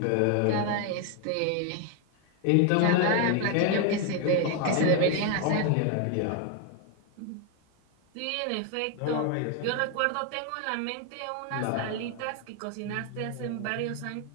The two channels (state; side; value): different; both; correlation 0.01